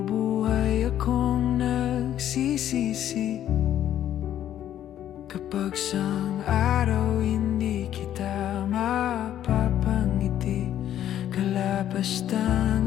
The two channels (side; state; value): right; quieter; 11.2 dB